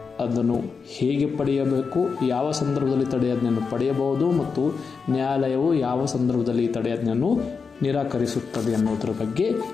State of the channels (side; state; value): right; quieter; 5.3 dB